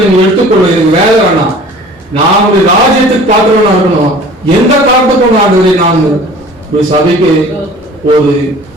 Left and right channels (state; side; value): normal; both; correlation 0.46